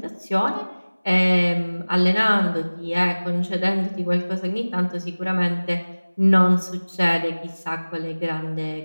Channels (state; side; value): inverted; both; correlation -1.00